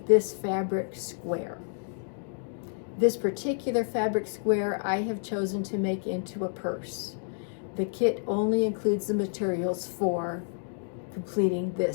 this fabric square. This particular fabric square I have chosen to make into a purse. The kit only includes the materials for completing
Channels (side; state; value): right; silent; digital silence